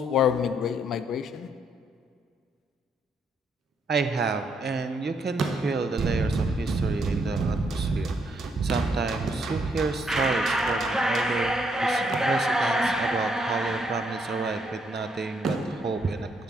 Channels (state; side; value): normal; both; correlation 0.73